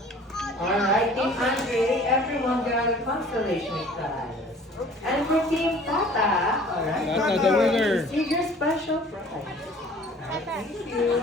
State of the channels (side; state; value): both; normal; correlation 0.50